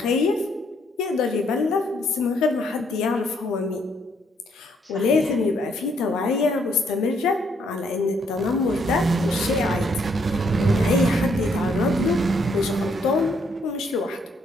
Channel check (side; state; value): both; normal; correlation 0.71